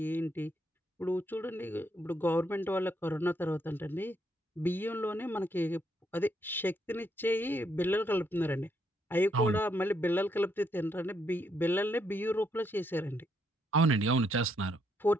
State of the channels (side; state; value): both; normal; correlation 0.75